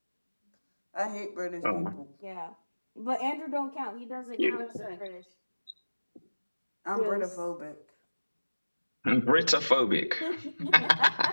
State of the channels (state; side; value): inverted; both; correlation -1.00